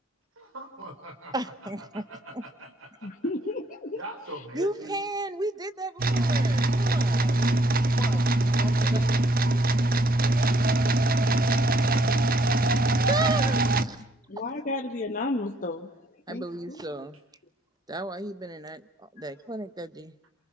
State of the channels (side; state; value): both; normal; correlation 0.67